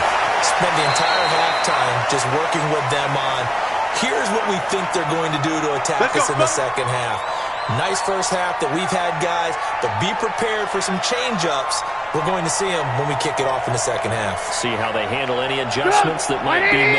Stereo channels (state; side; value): identical; both; correlation 1.00